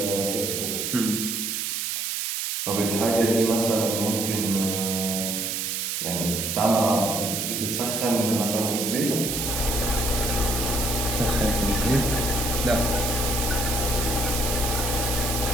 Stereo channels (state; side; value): noise; right; hiss, 1 dB below the sound